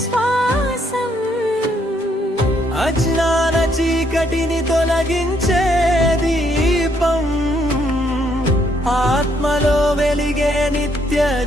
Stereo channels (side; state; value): both; normal; correlation 0.71